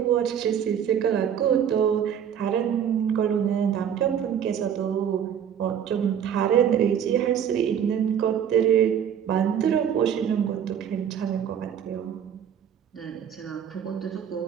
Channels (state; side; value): quieter; left; 8.7 dB